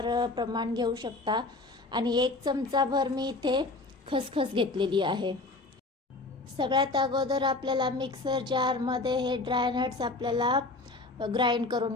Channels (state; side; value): quieter; right; 3.3 dB